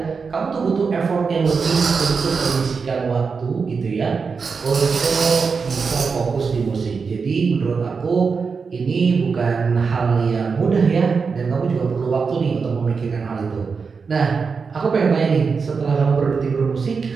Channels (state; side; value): quieter; left; 5.2 dB